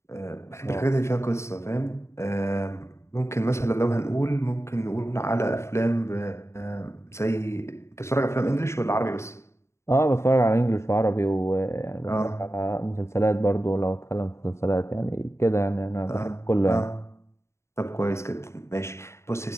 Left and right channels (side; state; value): right; late; 0.13 ms